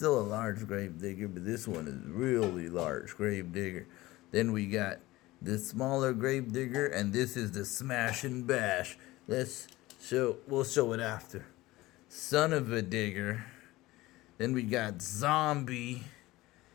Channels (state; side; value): quieter; right; 18.7 dB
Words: a large Grave Digger, but this one is really large Grave Digger. Then we got the smaller Grave Digger, and this is the Smash and Bash. We'll show it after. Son of a Digger. Then we got Zombie